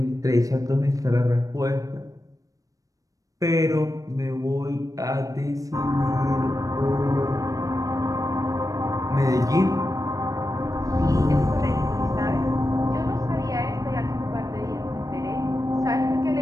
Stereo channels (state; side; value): late; left; 0.16 ms